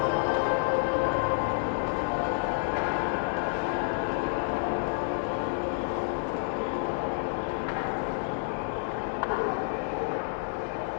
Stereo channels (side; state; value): right; silent; digital silence